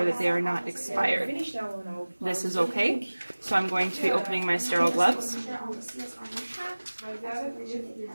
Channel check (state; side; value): inverted; both; correlation -1.00